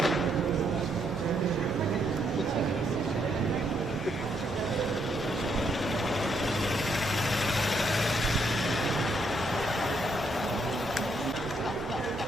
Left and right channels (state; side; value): normal; both; correlation 0.74